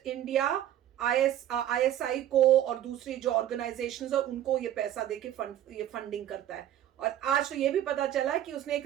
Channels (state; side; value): quieter; left; 11.7 dB